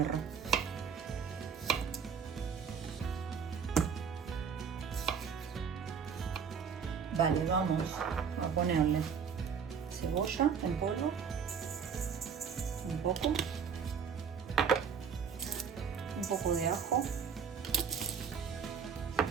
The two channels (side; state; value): left; quieter; 6.7 dB